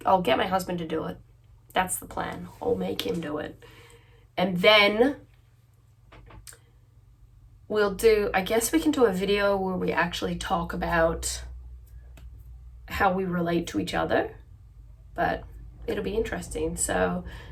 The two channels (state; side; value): identical; both; correlation 1.00